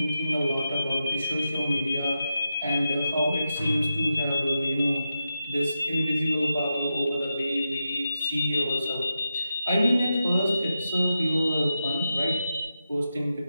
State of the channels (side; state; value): both; inverted; correlation -0.89